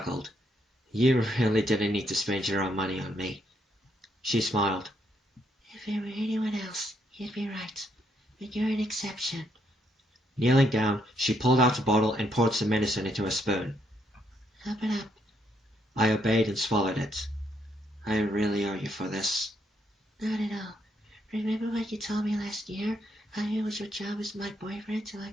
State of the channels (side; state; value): both; normal; correlation 0.74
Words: You really didn't need to spend your own money on me. She smiled. If it were anyone else, you'd be right. But you're an exception. Kneeling down, she pulled out a bottle and poured some medicine into a spoon. Open up. I obeyed and swallowed it. I really owe you for this. Not at all. Remember what you told me last year? How it was your job as my boyfriend to